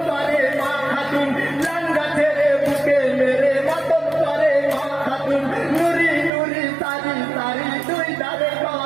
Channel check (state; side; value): drops out; left; at 6.3 s